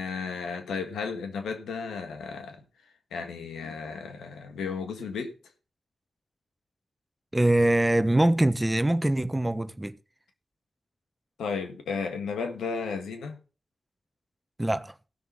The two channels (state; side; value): normal; both; correlation 0.93